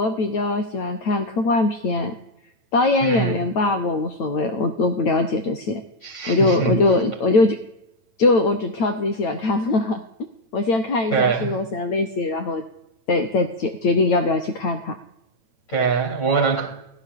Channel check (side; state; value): right; late; 9.0 ms